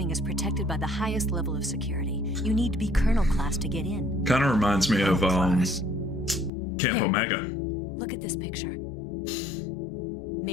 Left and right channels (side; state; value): right; drops out; at 6.5 s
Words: is protected by the highest level of security. You need to be Colonel class to get in. Kind of reminds me of Class. Camp Here. Omega. Look at this picture.